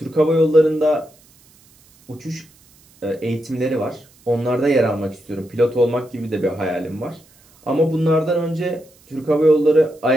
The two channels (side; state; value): right; noise; hiss, 29 dB below the sound